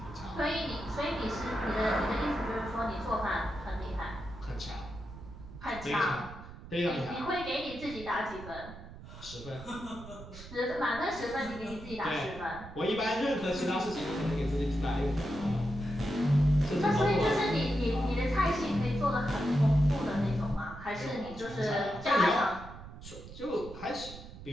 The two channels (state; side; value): noise; right; rumble, 14 dB below the sound